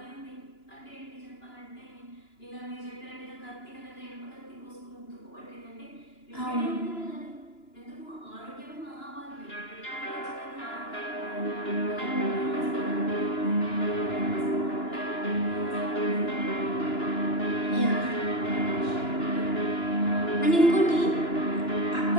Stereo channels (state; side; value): late; right; 2.9 ms